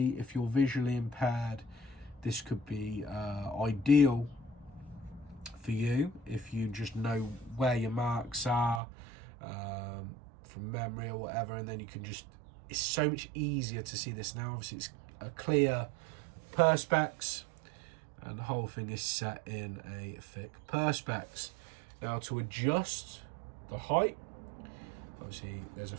If you're visually impaired, this could be ideal for you if you just know where your marks are from memory or whatever, and then you can just, it's so much easier to see this. Now obviously it's a clear perspex, and the whole thing is set in a thick perspex. Now, to adjust the height, obviously there's a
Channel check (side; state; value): left; drops out; at 8.8 s